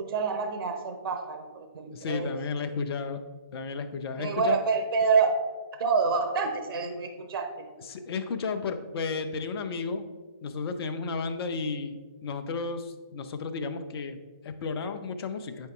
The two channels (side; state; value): both; inverted; correlation -0.42